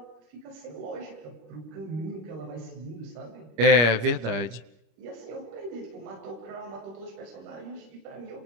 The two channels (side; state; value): left; late; 26 ms